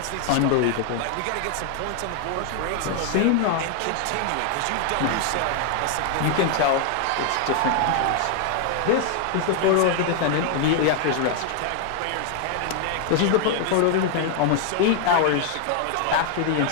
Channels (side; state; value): both; different; correlation 0.00